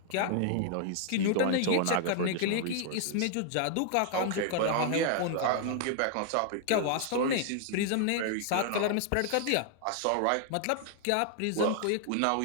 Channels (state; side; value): different; both; correlation 0.00